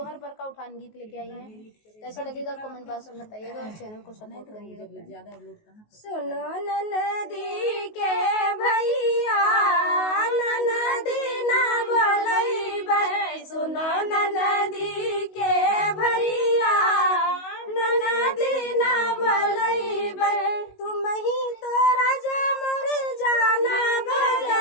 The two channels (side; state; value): right; late; 19 ms